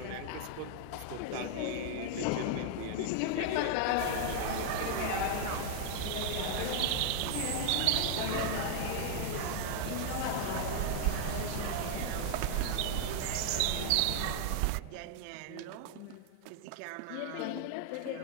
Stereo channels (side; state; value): both; different; correlation 0.00